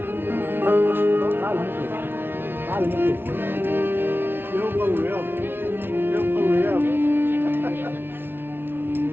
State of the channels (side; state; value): left; late; 0.11 ms